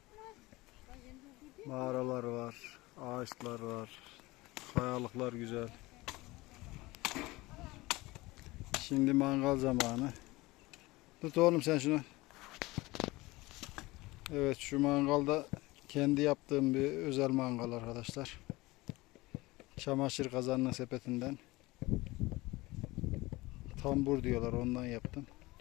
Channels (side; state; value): right; quieter; 21.0 dB